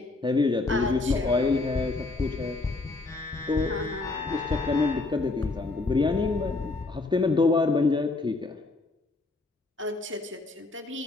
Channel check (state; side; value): quieter; right; 3.4 dB